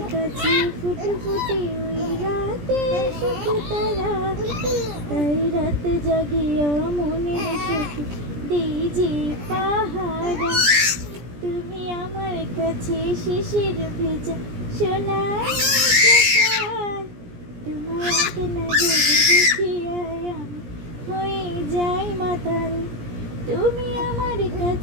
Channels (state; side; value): late; left; 17 ms